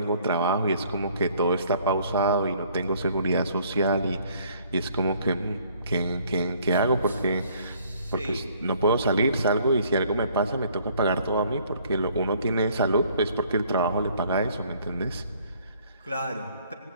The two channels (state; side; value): inverted; both; correlation -0.61